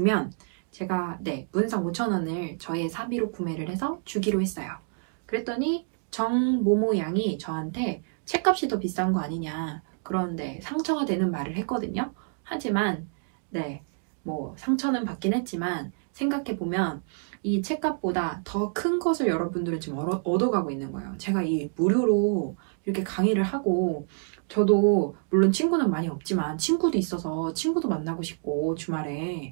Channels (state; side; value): silent; left; 60 dB below the other